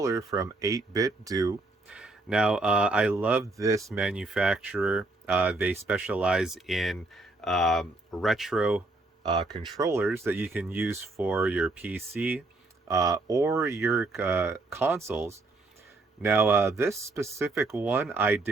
from 8BitDo. Now, I love this manufacturer. They specialize in retro controllers that you can use for your PC or your consoles. Now, this specific one I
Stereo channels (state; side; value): quieter; left; 3.1 dB